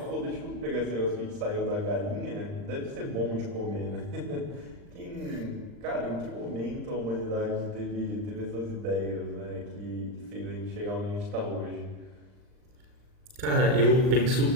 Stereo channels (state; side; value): late; left; 39 ms